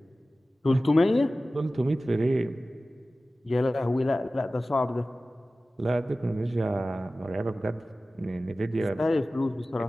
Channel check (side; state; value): both; normal; correlation 0.96